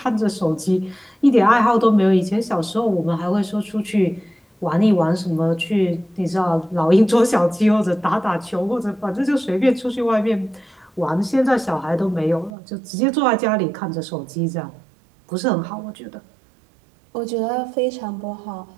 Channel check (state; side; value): drops out; left; at 12.5 s